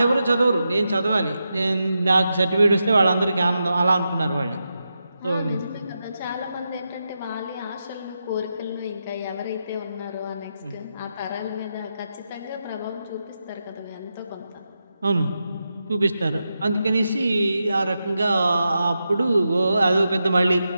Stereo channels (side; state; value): both; inverted; correlation -0.87